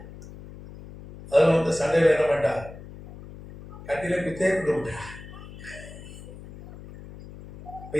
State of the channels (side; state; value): left; noise; hum, 15 dB below the sound